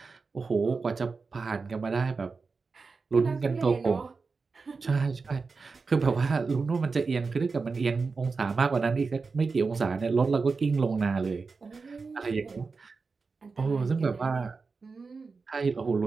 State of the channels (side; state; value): left; quieter; 4.5 dB